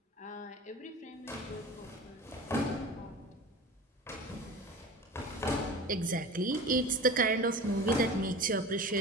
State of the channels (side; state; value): both; normal; correlation 0.35